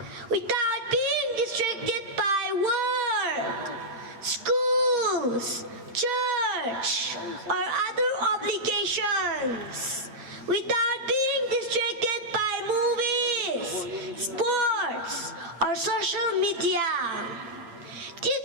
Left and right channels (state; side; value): late; left; 8.5 ms